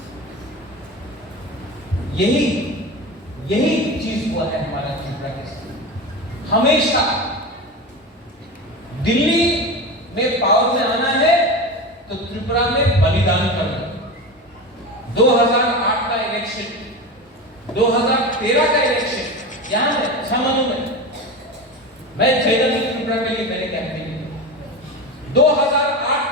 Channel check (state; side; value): normal; both; correlation 0.25